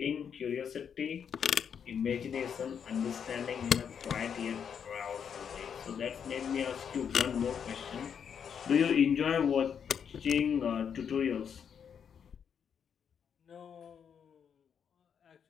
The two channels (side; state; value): right; quieter; 7.5 dB